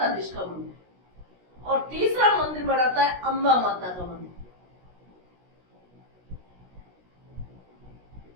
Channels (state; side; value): late; left; 16 ms